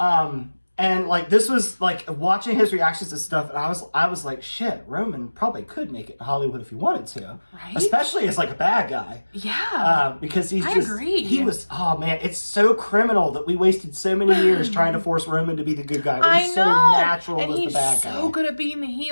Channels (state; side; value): inverted; both; correlation -1.00